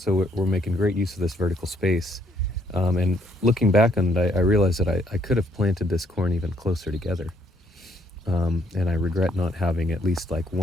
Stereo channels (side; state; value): both; normal; correlation 0.68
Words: we're making great use of this vertical space. And looking back on it, I realized that I could have planted this corn even closer together. And I regret not having at least like